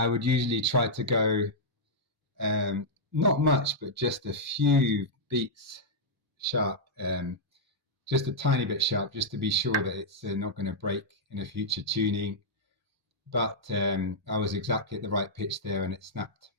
would usually try to go not much, but just a few beats sharp, just a tiny bit sharp, just to be sure that it's not going to break in a future tuning. But I was exactly at the right pitch there and it snapped.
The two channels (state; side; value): normal; both; correlation -0.06